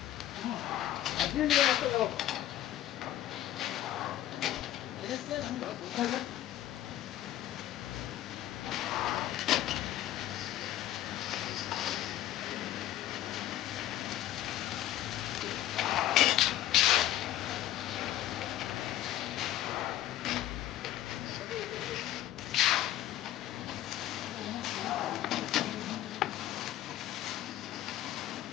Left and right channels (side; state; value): right; quieter; 13.1 dB